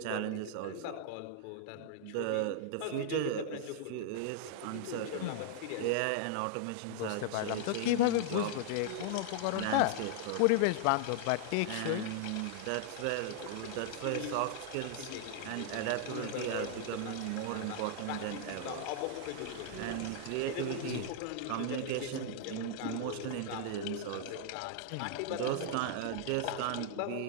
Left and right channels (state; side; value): different; both; correlation -0.01